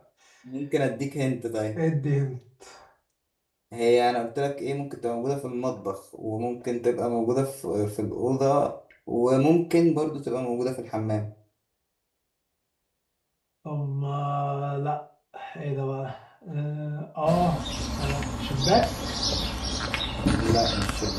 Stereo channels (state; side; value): identical; both; correlation 1.00